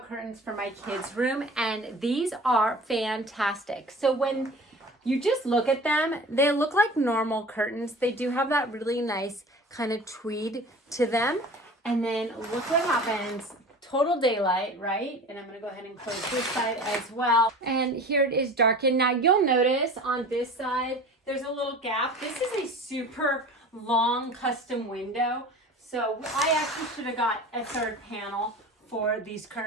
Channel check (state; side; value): normal; both; correlation 0.39